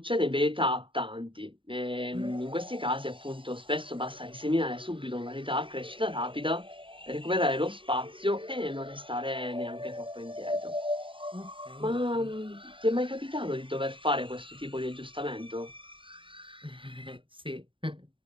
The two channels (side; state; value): left; late; 0.25 ms